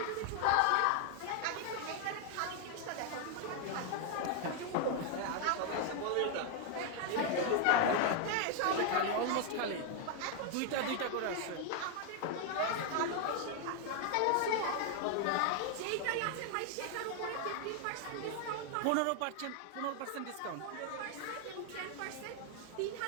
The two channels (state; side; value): different; both; correlation 0.00